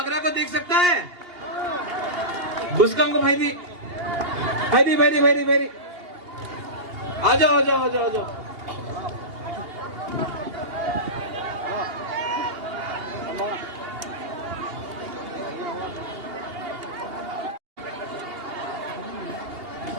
को देख सकता है? बुस्कम को भाई आ जाओ।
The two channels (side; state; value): left; late; 2.8 ms